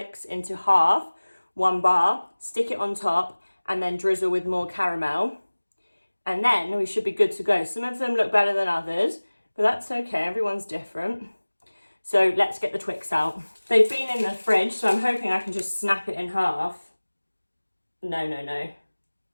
into half, 1 bar, stick it on top, and then drizzle with more caramel. And then we should be good to go. Some of them look better than others, but that's okay, everyone's different. So let's get the Twix out. They've been in the fridge, so I'm hoping I can just snap it in half. No.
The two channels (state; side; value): inverted; both; correlation -1.00